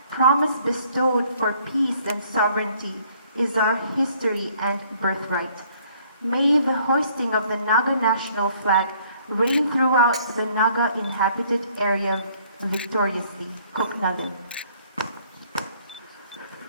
promise bestowed for peace and sovereignty is our history and birthright. May the hoisting of the Naga national flag reign throughout the Naga inhabited area victoriously. Koknalim.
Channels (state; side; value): inverted; both; correlation -0.61